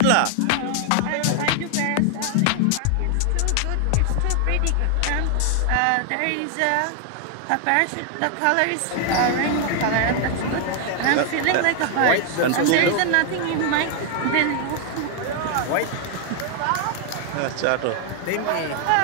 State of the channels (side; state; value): both; different; correlation 0.00